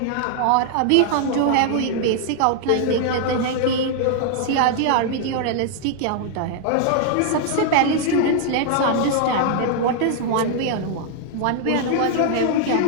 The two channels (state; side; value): different; both; correlation 0.00